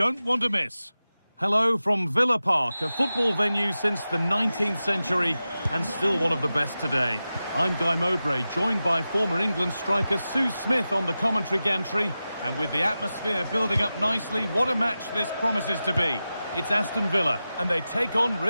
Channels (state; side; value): inverted; both; correlation -0.94